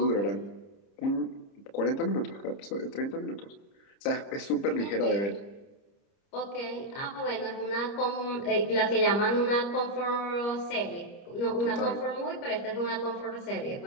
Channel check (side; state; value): right; late; 30 ms